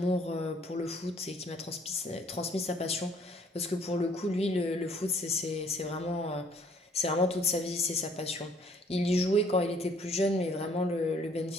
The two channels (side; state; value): both; normal; correlation 0.60